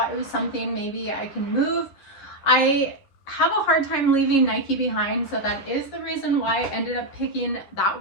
it was something maybe I can move. I have a hard time leaving Nike behind, so that is the reason why I ended up picking that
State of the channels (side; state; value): right; late; 11 ms